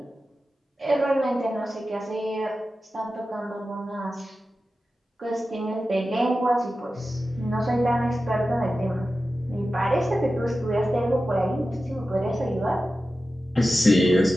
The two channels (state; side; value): normal; both; correlation 0.93